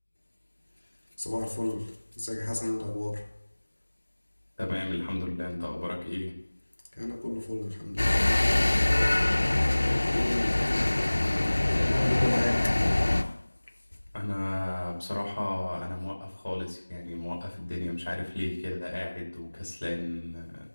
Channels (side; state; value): both; inverted; correlation -1.00